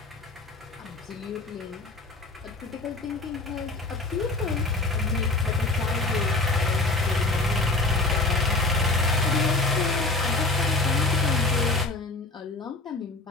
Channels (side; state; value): right; quieter; 3.2 dB